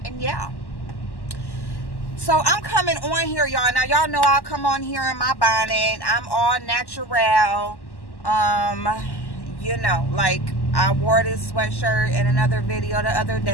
And yeah. So I'm coming on here, y'all. Now, y'all know I'll come on here in my bonnet. I'm all natural. You know, like I wore this sweatshirt in another video the other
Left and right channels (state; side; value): late; right; 1.1 ms